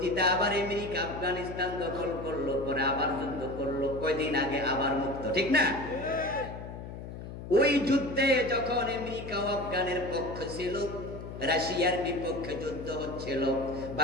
আবার আমেরিকা আফগানিস্তান দখল করলো, পরে আবার যুদ্ধ করলো, কয়দিন আগে আবার মুক্ত, ঠিক না? ওই যুদ্ধে যখন আমেরিকা ও আফগানের পক্ষ ছিল, রাশিয়ার বিপক্ষে যুদ্ধ হচ্ছিল,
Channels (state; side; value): noise; left; hum, 10 dB below the sound